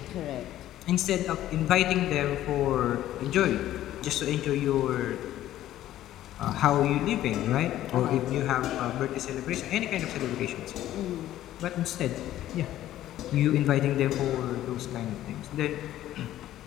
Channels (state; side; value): quieter; right; 13.3 dB